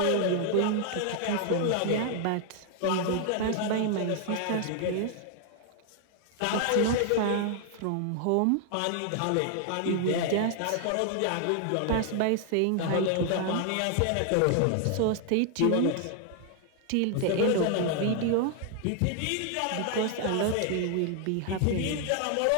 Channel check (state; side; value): different; both; correlation 0.00